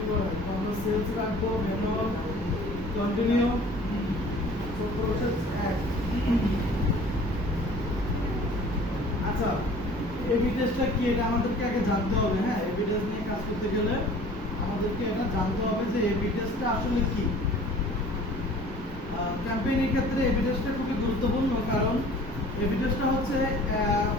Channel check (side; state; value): both; normal; correlation 0.48